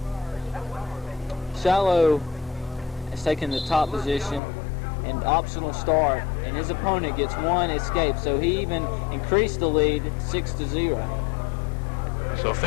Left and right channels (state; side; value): drops out; right; at 4.4 s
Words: Shiloh has taken the top position and optional start, and his opponent gets 1 escape, so he even increased the lead 6-0. So